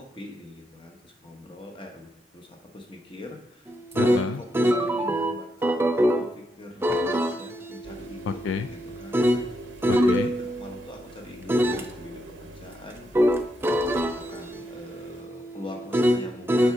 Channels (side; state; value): both; normal; correlation 0.81